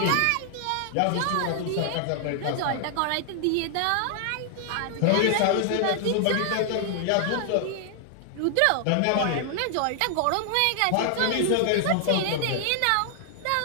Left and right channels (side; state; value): both; different; correlation 0.00